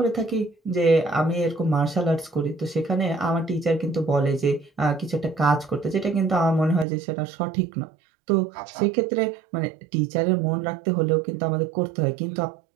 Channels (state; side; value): drops out; left; at 6.9 s